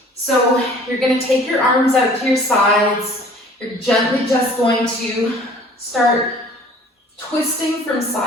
So you're going to take your arms out to your sides. You're gently just going to start twisting from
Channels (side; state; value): both; normal; correlation 0.51